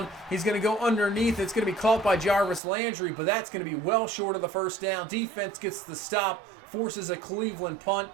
He's going to go underneath. It's going to be caught by Jarvis Landry, but that's going to be well short of the 1st down. Defense gets the stop, forces a Cleveland punt,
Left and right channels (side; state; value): left; drops out; at 2.6 s